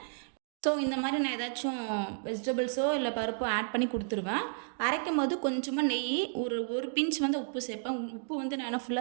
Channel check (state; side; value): silent; left; digital silence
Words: ஸோ இந்த மாதிரி நான் ஏதாச்சும் வெஜிடபிள்ஸோ இல்லை பருப்போ ஆட் பண்ணி கொடுத்துருவேன். அரைக்கும் போது கொஞ்சமாக நெய், ஒரு பிஞ்ச் வந்து உப்பு சேர்ப்பேன். உப்பு வந்து நான் என்ன